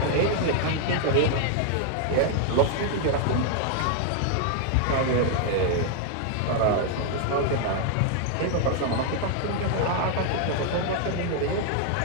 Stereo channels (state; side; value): different; both; correlation 0.00